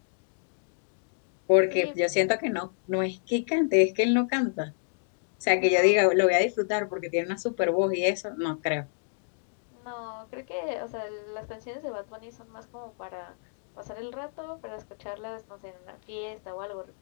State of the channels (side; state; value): right; silent; digital silence